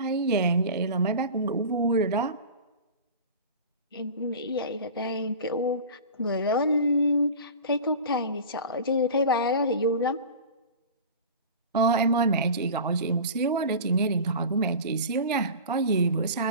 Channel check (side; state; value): both; inverted; correlation -0.34